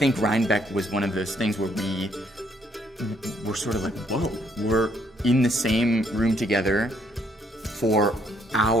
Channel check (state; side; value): normal; both; correlation 0.69